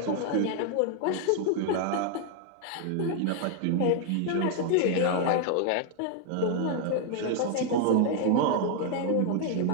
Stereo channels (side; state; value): both; different; correlation 0.01